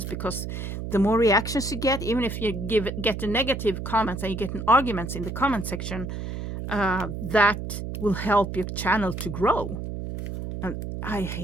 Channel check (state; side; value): noise; right; hum, 6 dB below the sound